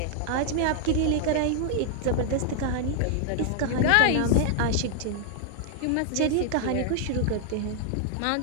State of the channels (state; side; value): different; both; correlation 0.00